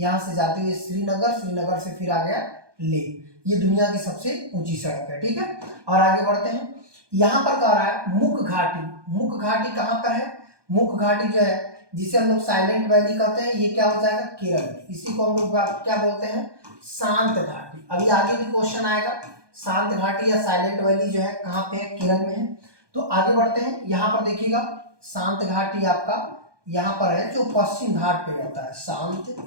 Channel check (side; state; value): left; late; 1.2 ms